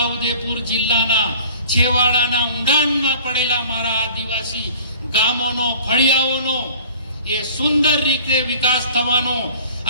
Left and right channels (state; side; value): inverted; both; correlation -0.48